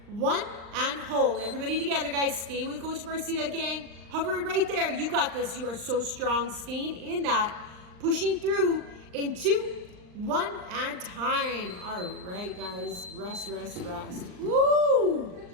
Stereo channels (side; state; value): left; late; 39 ms